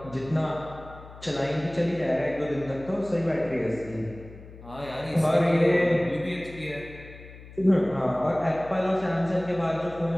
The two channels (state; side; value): noise; left; hum, 17 dB below the sound